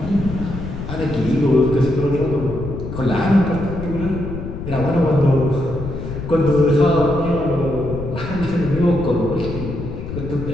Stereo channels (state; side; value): noise; left; rumble, 8 dB below the sound